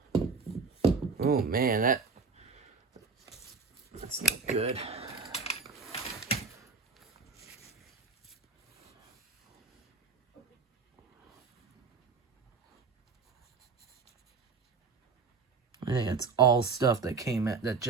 Oh man, that's not good. I think it's all stuff that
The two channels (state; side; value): quieter; left; 4.9 dB